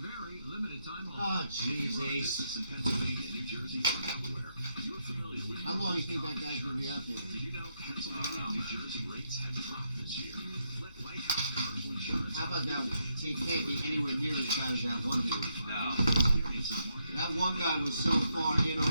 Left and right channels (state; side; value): inverted; both; correlation -0.79